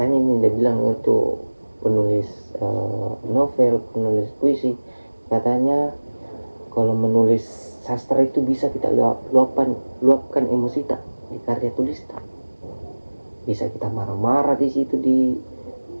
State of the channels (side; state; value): both; inverted; correlation -1.00